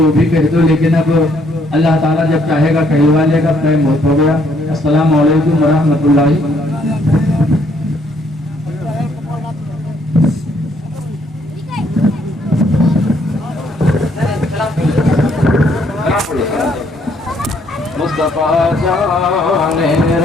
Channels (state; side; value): normal; both; correlation 0.68